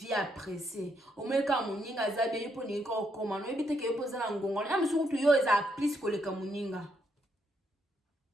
apprécier o meka muninga zabe yipo ni ko koma no ebite ke yopo za na ngongo na msu kutu yo eza plus ko le kamuninga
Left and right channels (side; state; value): both; normal; correlation 0.76